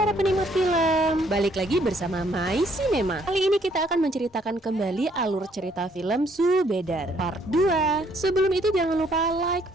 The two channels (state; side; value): normal; both; correlation 0.66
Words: penikmat film, balik lagi bersama My Cinema. Kali ini kita akan menceritakan kembali alur cerita film Subedar Part 2. Sebelum itu jangan lupa like,